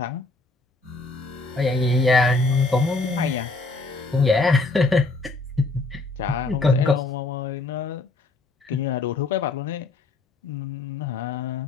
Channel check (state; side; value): quieter; right; 3.3 dB